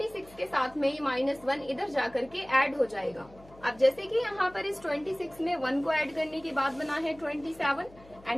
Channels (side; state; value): left; noise; hum, 23 dB below the sound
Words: के साथ में ये -1 इधर जाकर के ऐड हो जाएगा. अब जैसे कि यहाँ पर इस 26 में 1 को ऐड करने के बाद बना है 27